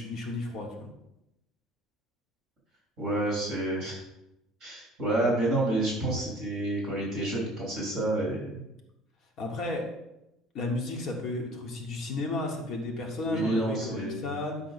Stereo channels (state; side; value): normal; both; correlation 0.49